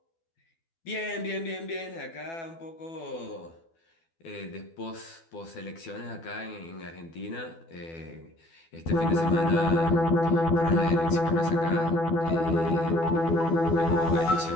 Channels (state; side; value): late; right; 12 ms